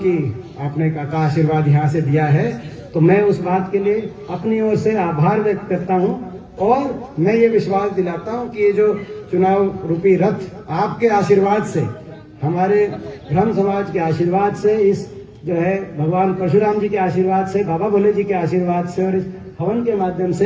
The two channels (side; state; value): both; identical; correlation 1.00